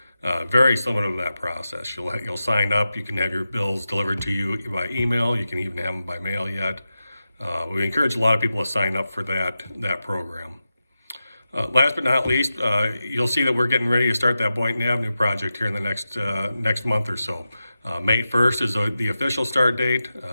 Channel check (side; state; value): both; inverted; correlation -0.91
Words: very similar to that process. You'll sign up, you can have your bills delivered to you by email, you can even have them by mail yet. We encourage a lot of people to sign up for that program. Last but not least, you'll see that we're getting ready to start that Boynton Avenue project here in the next month or so. May 1st is the official start date.